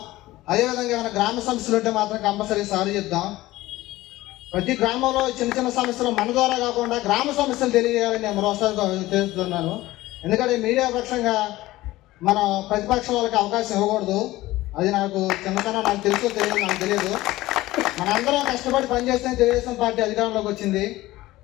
అదేవిధంగా ఏమైనా గ్రామ సమస్యలు ఉంటే మాత్రం కంపల్సరీ సార్ చెప్దాం. ప్రతి గ్రామంలో చిన్న చిన్న సమస్యలు మన ద్వారా కాకుండా గ్రామ సమస్యలు తెలియజేయాలని నేను మరోసారి తెలుస్తున్నాను. ఎందుకంటే మీడియా పక్షంగా మనం ప్రతిపక్షం వాళ్ళకి అవకాశం ఇవ్వకూడదు. అది నాకు చిన్నతనం, నాకు తెలుసో తెలియదు, నాకు తెలియదు. మనందరం కష్టపడి పనిచేస్తే తెలుగుదేశం పార్టీ అధికారంలోకి వచ్చింది.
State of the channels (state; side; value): quieter; right; 17.5 dB